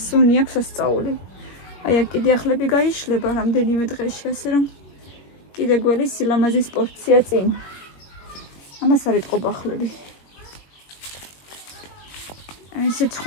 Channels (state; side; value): late; right; 21 ms